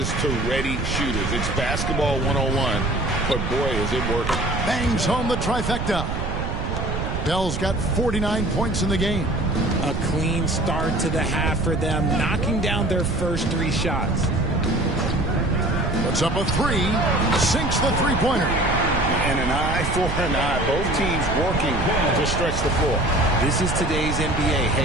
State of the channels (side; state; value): right; noise; rumble, 3 dB below the sound